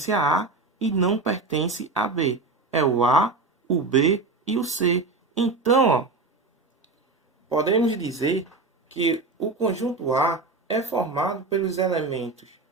a A e não pertencem a B? É o A, o B e o C. Então, ó, podemos dizer que o conjunto A é formado pelos elementos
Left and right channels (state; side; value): quieter; left; 3.7 dB